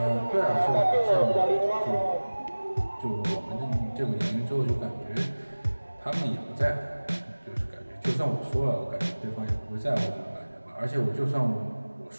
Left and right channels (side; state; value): both; inverted; correlation -1.00